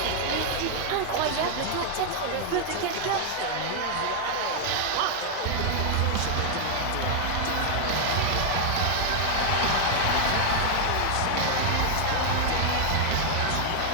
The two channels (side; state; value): both; different; correlation 0.00